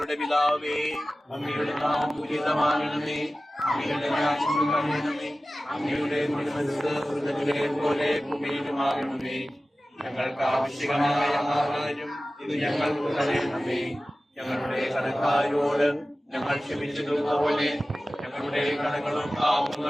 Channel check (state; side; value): normal; both; correlation 0.96